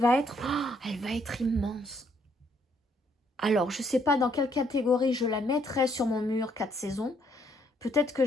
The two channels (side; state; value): both; normal; correlation 0.69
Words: être immense. Alors, je ne sais pas dans quelle catégorie je la mettrai sur mon mur 4 saisons. Peut-être que